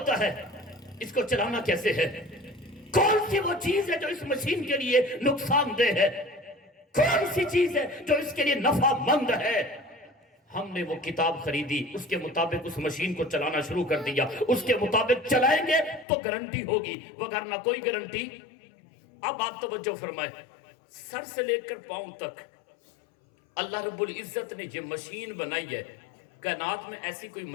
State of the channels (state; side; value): drops out; right; at 16.1 s